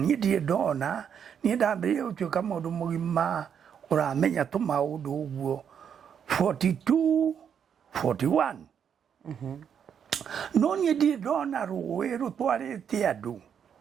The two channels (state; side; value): quieter; left; 7.9 dB